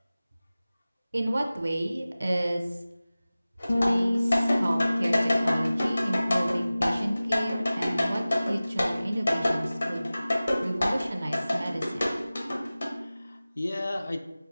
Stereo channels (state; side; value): inverted; both; correlation -0.97